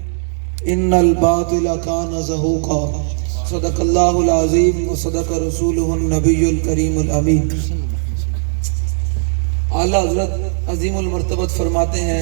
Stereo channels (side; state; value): left; silent; 63 dB below the other